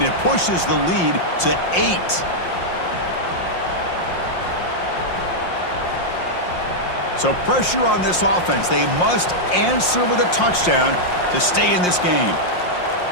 it pushes the lead to 8. So pressure on this offense. They must answer with a touchdown to stay in this game.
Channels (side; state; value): right; late; 5.6 ms